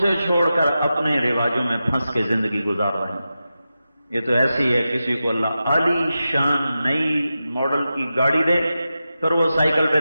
چھوڑ کر اپنے رواجوں میں پھنس کے زندگی گزار رہے ہیں۔ یہ تو ایسی ہے، کسی کو اللہ عالی شان نئی ماڈل کی گاڑی دے، پھر وہ سائیکل پہ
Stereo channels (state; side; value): inverted; both; correlation -0.92